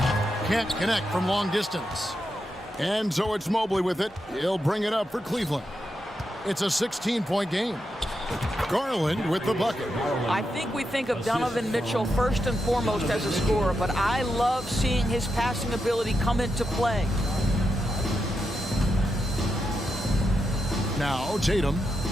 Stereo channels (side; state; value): both; normal; correlation 0.86